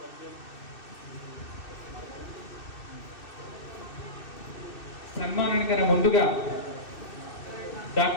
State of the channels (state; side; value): late; right; 2.6 ms